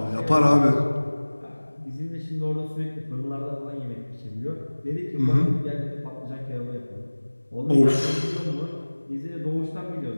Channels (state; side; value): inverted; both; correlation -1.00